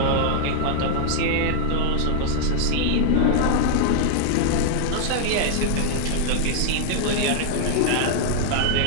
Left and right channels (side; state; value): both; different; correlation -0.01